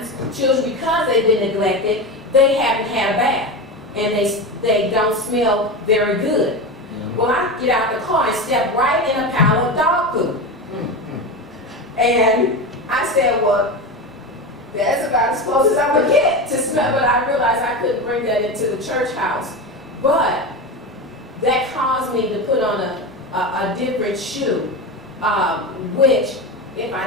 children, because they've been neglected, they haven't had a bath and they don't smell very good. Well, I get out the car and step right in a pile of dog poop. And I said, well, that's about as close as I'm going to get to smell. But I realized I couldn't bring that into the church house. But that caused me to put on a different shoe, which, if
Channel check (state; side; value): normal; both; correlation 0.21